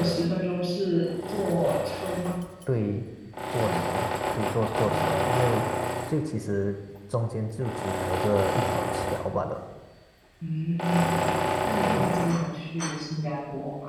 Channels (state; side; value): identical; both; correlation 1.00